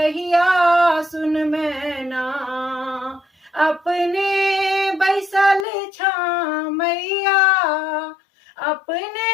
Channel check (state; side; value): drops out; right; at 5.7 s